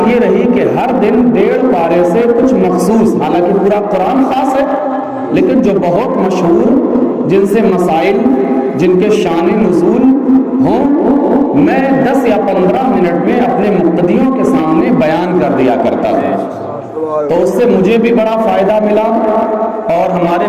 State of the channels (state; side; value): identical; both; correlation 1.00